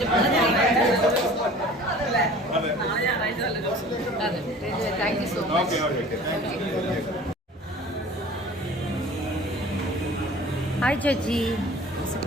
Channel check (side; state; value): both; normal; correlation 0.45